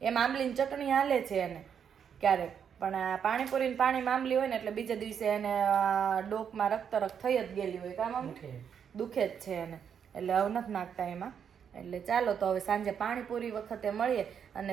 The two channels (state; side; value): quieter; left; 7.8 dB